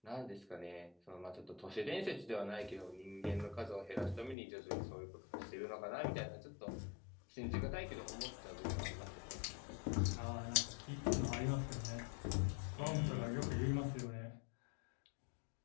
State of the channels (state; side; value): drops out; right; at 4.4 s